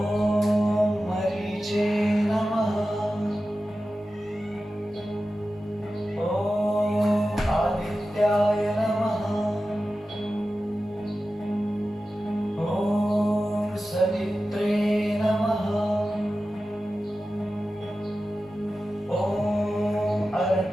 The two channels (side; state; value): both; normal; correlation 0.94